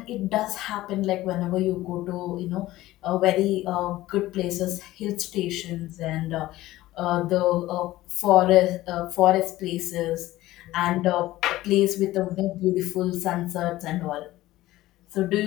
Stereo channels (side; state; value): right; quieter; 16.5 dB